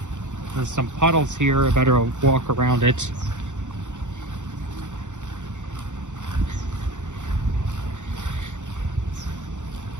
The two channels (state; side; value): late; left; 0.85 ms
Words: There's some puddles here. I better walk around it.